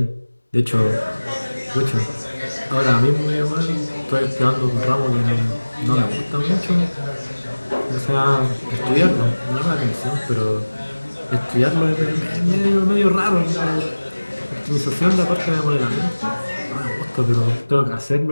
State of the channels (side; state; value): both; inverted; correlation -1.00